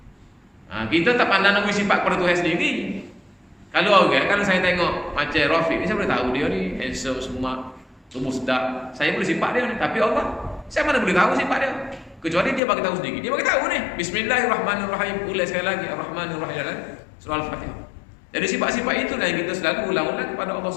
Kita tak pandang nama sifat pada Tuhan sendiri. Kalau saya tengok macam Rafiq ni, saya boleh tahu dia ni handsome semua, tubuh sedap. Saya boleh sifat dia ni, tapi Allah saya mana boleh tahu sifat dia. Kecuali dia bagi tahu sendiri. Dia bagi tahu ni. Bismillahirrahmanirrahim. Ulang sekali lagi Ar-Rahmanir-Rahim dalam surah Al-Fatihah. Jadi sifat-sifat itulah yang kita selalu ulang-ulang kepada Allah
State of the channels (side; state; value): right; drops out; at 12.6 s